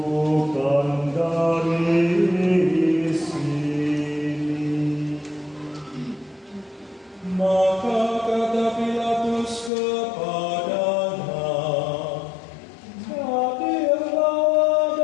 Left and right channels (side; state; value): right; drops out; at 9.7 s